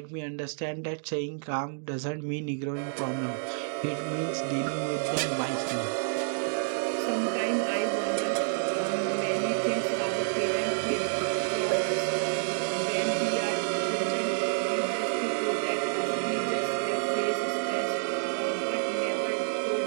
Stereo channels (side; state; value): left; silent; digital silence